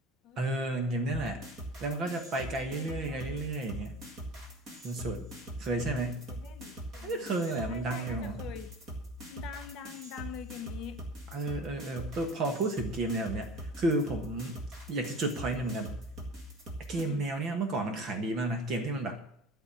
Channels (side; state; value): both; normal; correlation 0.39